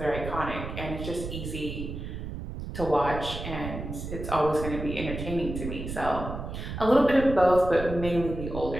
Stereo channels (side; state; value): right; noise; rumble, 7 dB below the sound